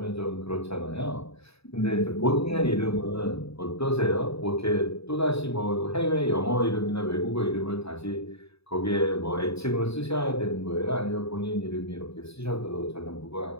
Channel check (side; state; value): right; late; 0.78 ms